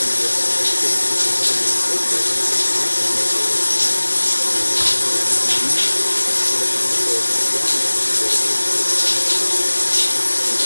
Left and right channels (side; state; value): both; inverted; correlation -1.00